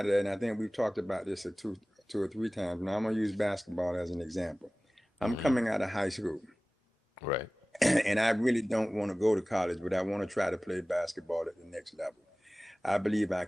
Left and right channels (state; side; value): normal; both; correlation 0.98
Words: of that, and I think we've talked about this two or three times. Now I'm going to use basketball as an example. I'm Mm-hmm. coming out of high school, Right. and I really don't want to go to college, but I want to try to play basketball at the next level. I believe I